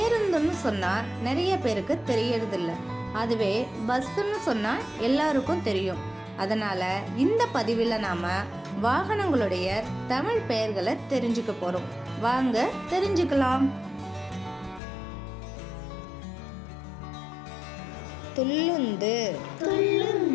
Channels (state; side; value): drops out; right; at 14.8 s